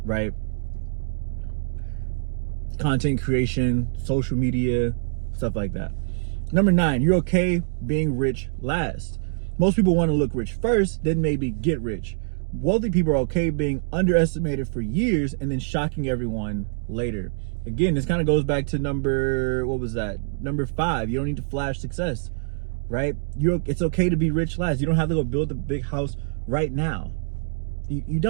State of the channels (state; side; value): silent; left; digital silence